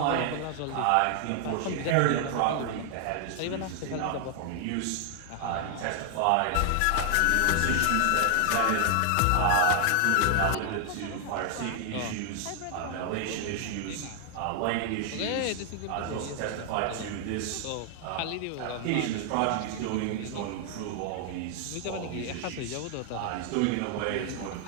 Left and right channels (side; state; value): both; different; correlation 0.00